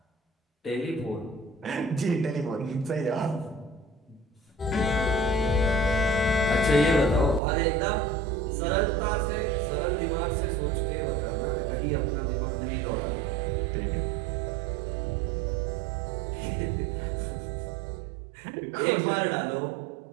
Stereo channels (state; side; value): drops out; left; at 7.4 s